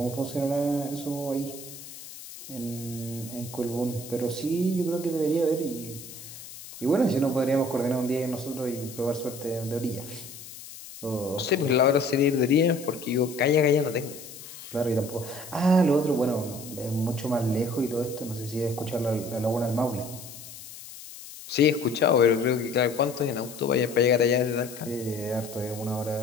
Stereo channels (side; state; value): left; noise; hiss, 14 dB below the sound